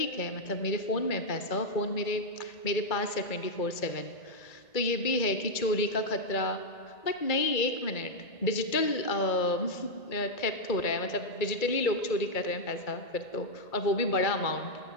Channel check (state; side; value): late; right; 2.3 ms